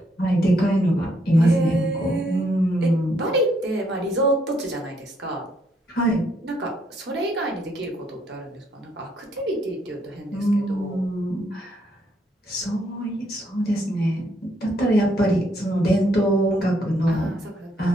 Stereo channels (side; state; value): both; normal; correlation 0.72